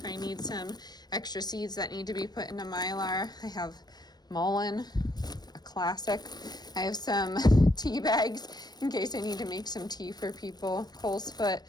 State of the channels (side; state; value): right; late; 0.19 ms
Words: I need some extra seeds that need to be put in a Mylar. I have mullein, a classic. I have some tea bags in case I need to make some tea for people. Cole's foot,